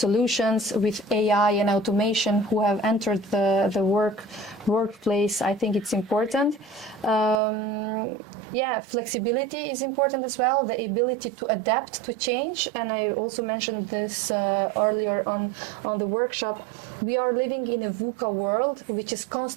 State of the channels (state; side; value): drops out; left; at 7.4 s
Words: with AI and automation who have entered the workplace. I think it's important. Flexibility is important as well, the ability to adapt to change. And I also mentioned this earlier on the workshop. We are living in a VUCA world which is